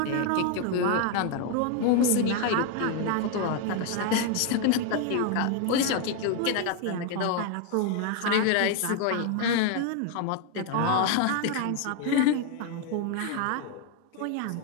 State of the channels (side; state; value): both; different; correlation 0.01